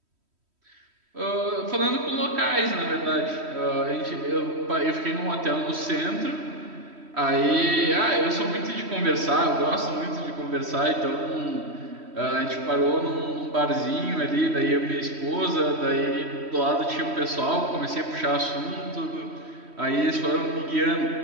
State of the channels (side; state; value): left; late; 3.1 ms